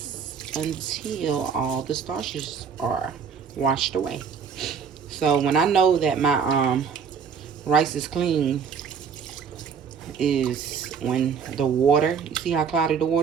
until all the starches are washed away. So when I know that my rice is clean is when the water, you see how cloudy the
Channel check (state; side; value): quieter; left; 6.5 dB